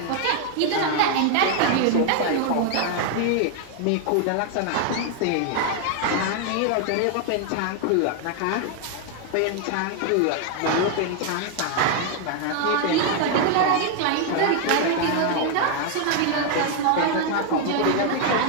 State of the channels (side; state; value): both; different; correlation 0.00